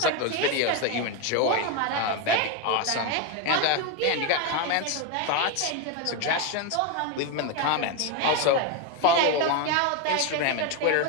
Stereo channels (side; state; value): both; different; correlation 0.02